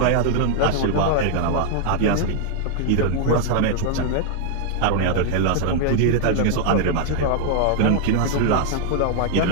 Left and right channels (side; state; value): both; different; correlation 0.00